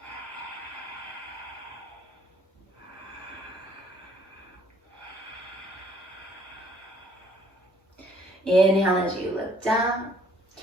Inhale as you look down.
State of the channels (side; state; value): both; normal; correlation 0.62